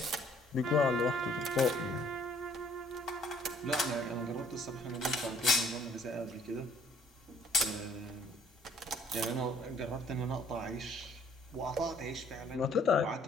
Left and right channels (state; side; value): normal; both; correlation 0.61